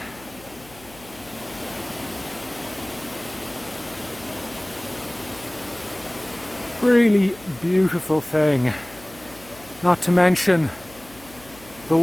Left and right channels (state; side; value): noise; left; hum, 22 dB below the sound